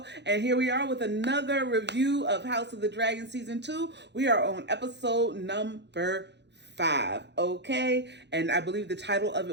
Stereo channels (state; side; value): late; left; 0.50 ms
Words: and here we are with another review of House of the Dragon Season 2. We are on episode number 5, okay? And I believe the title of